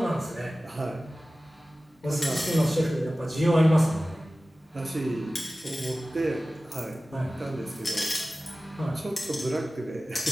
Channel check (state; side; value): normal; both; correlation 0.96